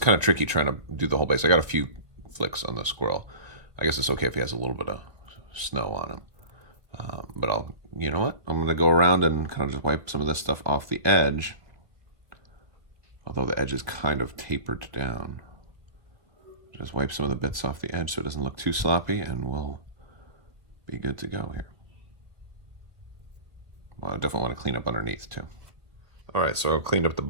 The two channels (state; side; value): late; left; 1.5 ms